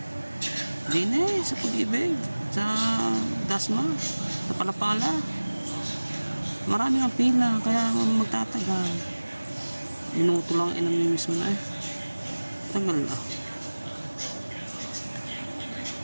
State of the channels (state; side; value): inverted; both; correlation -1.00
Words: Dini sa pag-ibig. Sa Dasma. Sa Palapala. Marami ang pila. Kaya magtatagal. Minuto lang eh. Namimiss mo na eh. Tagal na.